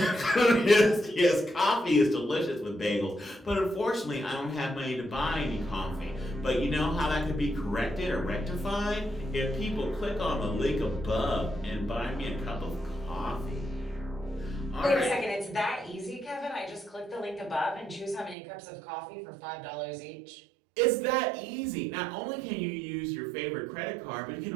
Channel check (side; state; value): left; drops out; at 18.4 s